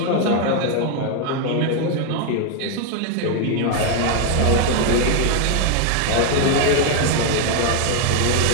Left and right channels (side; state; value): both; different; correlation 0.01